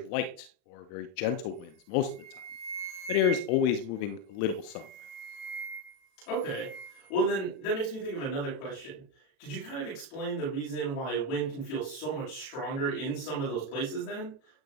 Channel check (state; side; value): late; right; 36 ms